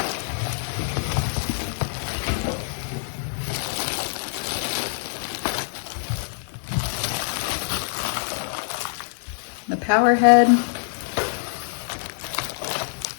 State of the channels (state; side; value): silent; right; 59 dB below the other